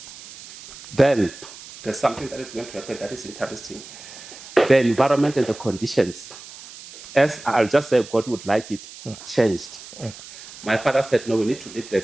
Then there's something that is going to happen that is interesting. The environment and the conditions, as I'll just say God would like it, changed. My father said, no, we need to leave the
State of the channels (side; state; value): right; noise; hiss, 16 dB below the sound